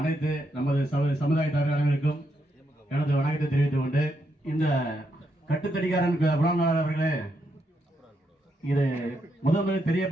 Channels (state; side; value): normal; both; correlation 0.80